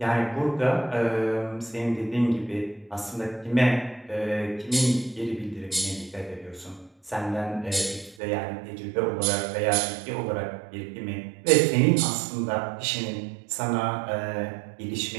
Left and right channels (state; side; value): drops out; left; at 8.2 s